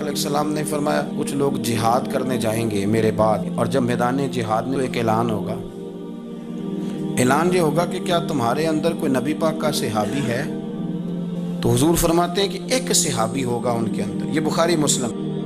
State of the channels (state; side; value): identical; both; correlation 1.00